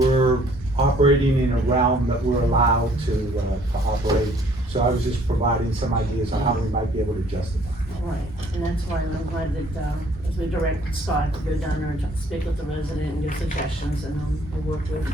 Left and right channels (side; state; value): both; normal; correlation 0.59